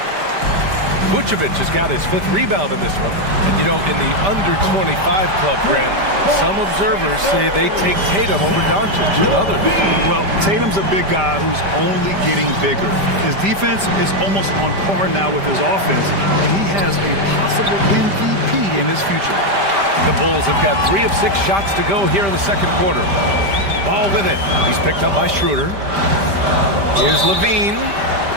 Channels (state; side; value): late; left; 5.1 ms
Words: Vucevic has got his 5th rebound in this one. And, you know, in the under-25 club, Grant, some observers say they take Tatum over Doncic and others. Well, Tatum's a big guy who's only getting bigger. His defense is almost on par now with his offense, and he has a possible MVP in his future. The Bulls have got 3 of 6 shots to go here in the second quarter. Ball with it. He's picked up by Schroeder. Here's Levine.